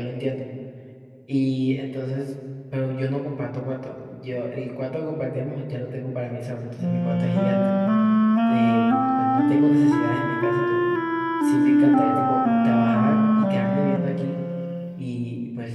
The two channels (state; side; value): identical; both; correlation 1.00